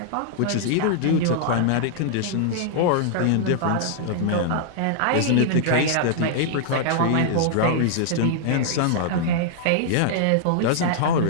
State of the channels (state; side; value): different; both; correlation -0.01